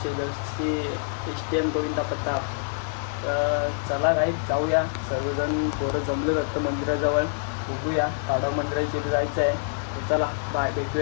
जशी STM गोविंदा प्रताप. तर चला गाईज जाऊया, सर्वजण पोरं जमले जातं मंदिराजवळ. बघूया ताडव मंदिराची जायचं आहे. तर चला बाय,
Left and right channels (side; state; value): right; silent; digital silence